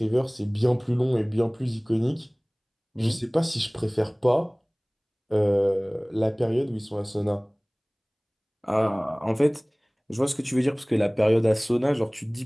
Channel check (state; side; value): identical; both; correlation 1.00